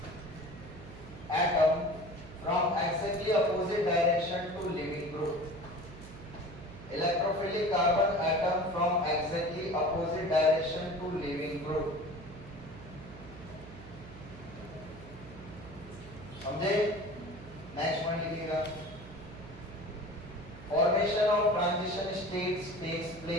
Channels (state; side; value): noise; right; hum, 15 dB below the sound